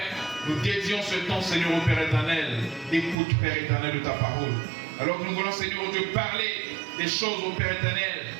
nous dédions ce temps, Seigneur, au Père éternel, d'écoute, Père éternel, de ta parole. Alors que nous voulons, Seigneur, ô Dieu, parler des choses, au Père éternel,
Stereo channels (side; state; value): left; drops out; at 3.2 s